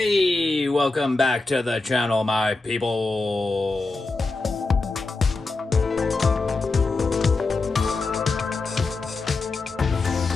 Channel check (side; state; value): right; quieter; 3.5 dB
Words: Hey, welcome back to the channel, my people.